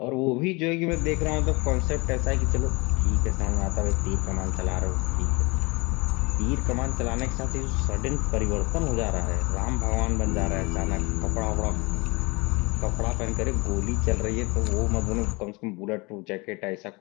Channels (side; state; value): right; quieter; 26.2 dB